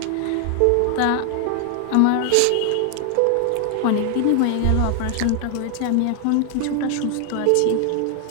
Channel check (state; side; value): different; both; correlation 0.00